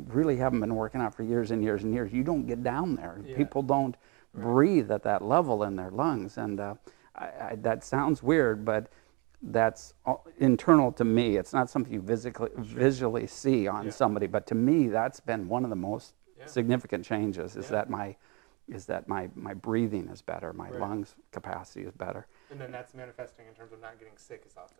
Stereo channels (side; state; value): left; quieter; 29.8 dB